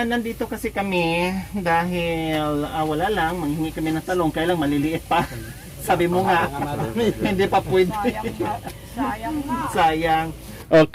nandito kasi kami dahil wala lang, manghingi kami ng talong, kaya lang maliliit pa. Sabi mo nga, hindi pa pwede. Sayang nga. Sayang.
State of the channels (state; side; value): identical; both; correlation 1.00